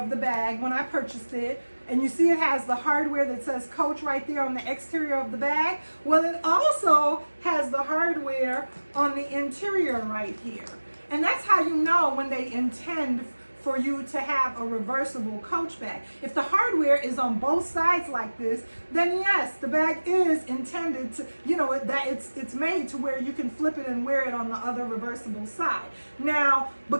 the bag when I purchased it. And you see it has the hardware that says Coach right there on the exterior of the bag. Well, it also has the hardware on the interior right here. And that's how you know when they intend for you to have a reversible Coach bag. If the hardware is on both sides like this, then yes, the bag is intended to, that it's made to where you can flip it and wear it on the other reversible side. Now,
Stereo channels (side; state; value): both; inverted; correlation -1.00